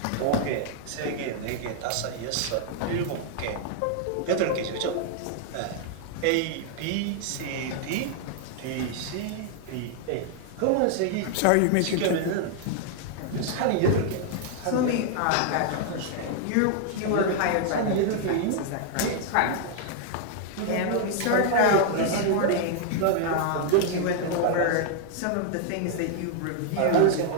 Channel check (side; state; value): both; different; correlation 0.00